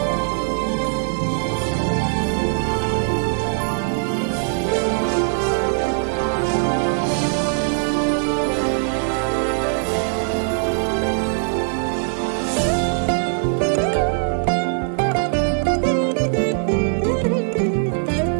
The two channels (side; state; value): left; silent; digital silence